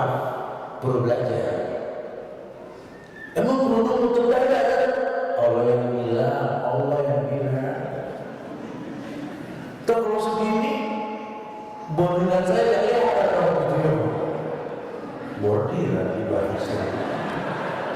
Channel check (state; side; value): identical; both; correlation 1.00